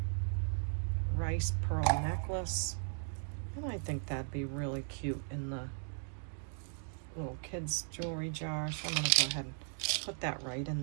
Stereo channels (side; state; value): left; silent; 53 dB below the other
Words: rice pearl necklace, and I think that'd be really cute in the little kids jewelry jar. So I'm gonna go ahead and put that right in